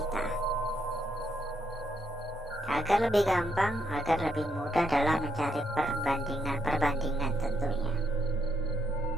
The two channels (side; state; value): both; normal; correlation 0.77